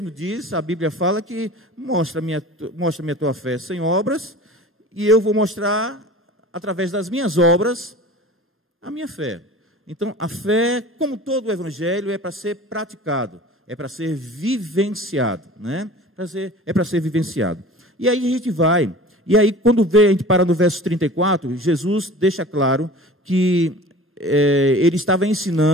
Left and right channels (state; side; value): normal; both; correlation 0.40